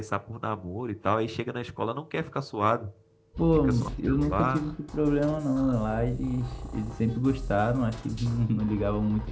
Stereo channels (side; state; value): both; identical; correlation 1.00